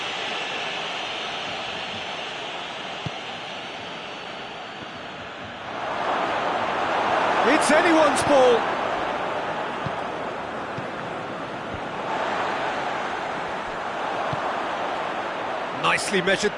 It's anyone's ball. Nicely measured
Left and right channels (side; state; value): both; identical; correlation 1.00